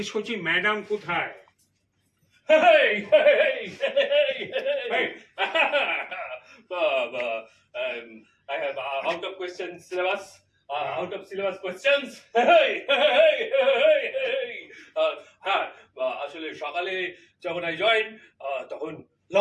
করছি ম্যাডাম কোথায়? Hey, hey, hey, Hey. I have out of question syllabus. Out of syllabus questions. Hey, hey, hey, hey. হ্যাঁ, আসলে সকালে যখন I joined, তখন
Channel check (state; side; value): identical; both; correlation 1.00